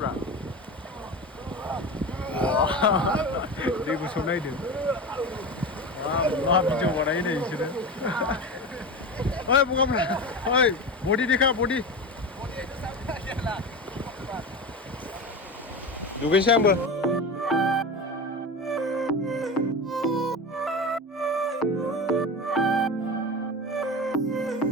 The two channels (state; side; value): normal; both; correlation 0.26